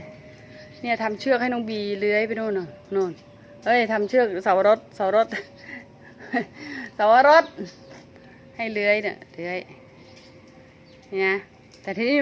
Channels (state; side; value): identical; both; correlation 1.00